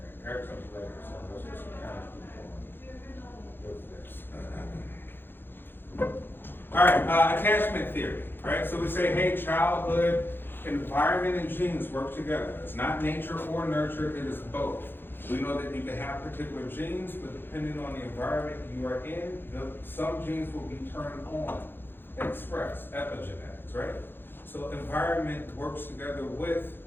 Erickson's later, so let's just kind of keep going with this. All right, attachment theory, right? So we say, hey, childhood, environment, and genes work together. It's not nature or nurture, it is both. We know that you can have particular genes, but depending on the environment you are in, some genes will be turned on, expressed, epigenetics, right? So environment works together with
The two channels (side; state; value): right; late; 0.10 ms